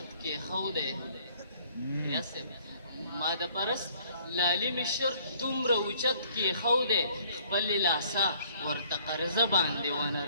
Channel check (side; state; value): both; inverted; correlation -0.59